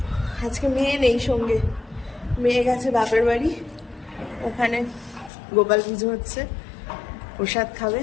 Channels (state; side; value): drops out; right; at 5.3 s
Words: আজকে মেয়ে নেই সঙ্গে, মেয়ে গেছে বাপের বাড়ি, ওখানে গোপাল পুজো হচ্ছে, প্রসাদ খাবে।